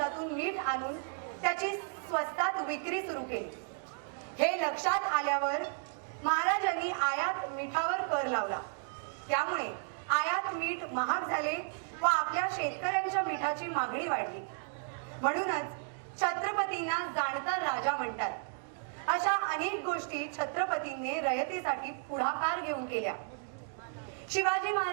मीठ आणून त्याची स्वस्तात विक्री सुरू केली. हे लक्षात आल्यावर महाराजांनी आयात मिठावर कर लावला. त्यामुळे आयात मीठ महाग झाले व आपल्या शेतकऱ्यांच्या मिठाची मागणी वाढली. म्हणूनच छत्रपतींना जाणता राजा म्हणतात. अशा अनेक गोष्टी छत्रपतींनी रयतेसाठी पुढाकार घेऊन केल्या. शिवाजी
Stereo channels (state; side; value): silent; left; 55 dB below the other